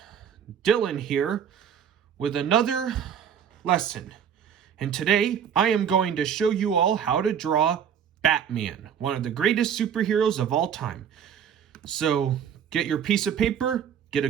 Dylan here with another lesson. And today I am going to show you all how to draw Batman, one of the greatest superheroes of all time. So get your piece of paper, get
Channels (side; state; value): left; quieter; 8.2 dB